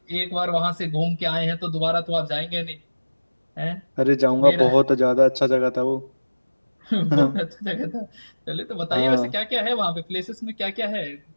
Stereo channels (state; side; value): inverted; both; correlation -1.00